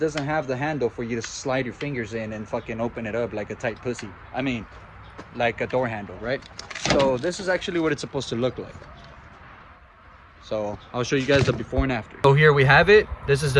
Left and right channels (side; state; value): both; identical; correlation 1.00